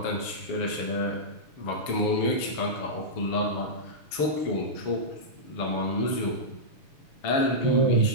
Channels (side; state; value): right; late; 7.0 ms